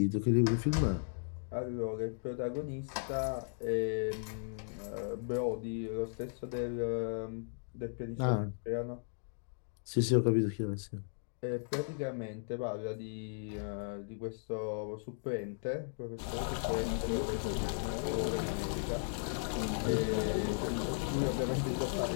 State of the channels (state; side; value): silent; right; digital silence